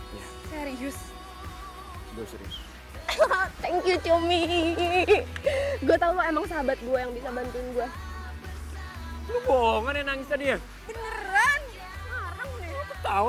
Iya. Serius? Gue serius. Thank you, Cumi. Gue tau lo emang sahabat gue yang bisa bantuin gue. Lo bohongan ya nangis tadi ya? Beneran? Ngarang deh.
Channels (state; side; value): identical; both; correlation 1.00